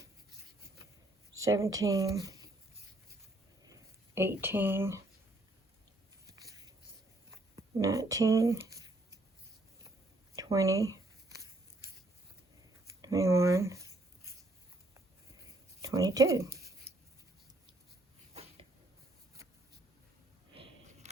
17, 18, 19, 20, 21, 22.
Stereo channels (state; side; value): normal; both; correlation 0.68